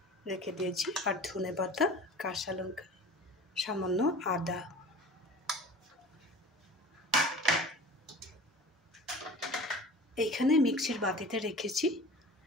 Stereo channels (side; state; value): both; normal; correlation 0.40